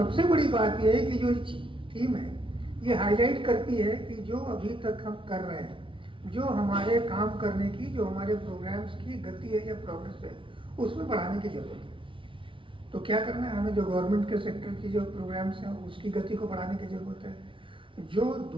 बड़ी बात यह है कि जो थीम है ये हाईलाइट करती है कि जो अभी तक हम कर रहे हैं, जो हमारे काम करने की, जो हमारे प्रोग्राम्स की गति है या प्रोग्रेस है, उसमें बढ़ाने की जरूरत है। तो क्या करना है, हमें जो गवर्नमेंट के सेक्टर की जो प्रोग्राम्स हैं उसकी गति को बढ़ाने की ज़रूरत है, जो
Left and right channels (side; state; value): left; late; 0.25 ms